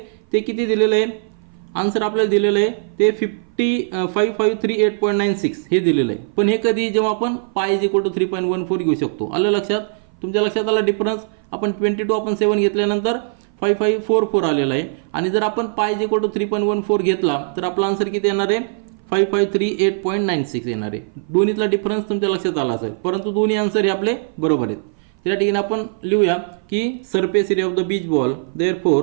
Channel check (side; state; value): left; silent; 57 dB below the other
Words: ते किती दिलेलं आहे, आन्सर आपल्याला दिलेलं आहे ते 5538.96 हे दिलेलं आहे. पण हे कधी, जेव्हा आपण पाय = 3.14 घेऊ शकतो. आलं लक्षात. तुमच्या लक्षात आला डिफरन्स. आपण 22/7 घेतल्यानंतर 5544 आलेला आहे आणि जर आपण पाय = 3.14 घेतला तर आपला आन्सर किती येणार आहे, 5538.96 येणार आहे. दोन्हीतला डिफरन्स तुमच्या लक्षात आला असेल, परंतु दोन्ही आन्सर हे आपले बरोबर आहेत. त्या ठिकाणी आपण लिहूया की surface area of the beach ball,